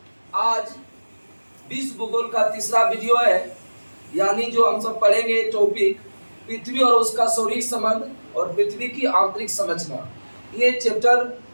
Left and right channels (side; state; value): both; inverted; correlation -1.00